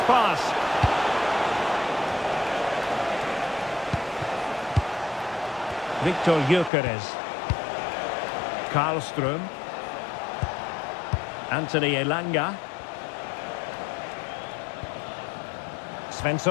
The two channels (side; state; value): right; drops out; at 6.7 s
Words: pass. Victor Gyökeres. Karlström. Anthony Elanga.